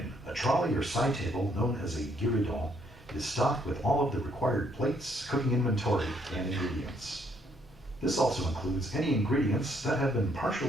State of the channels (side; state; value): both; normal; correlation 0.69